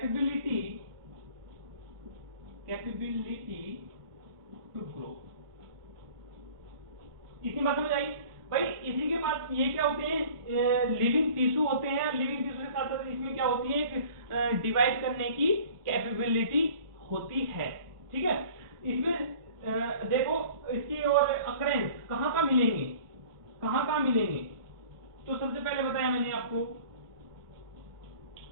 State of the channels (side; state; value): left; late; 1.5 ms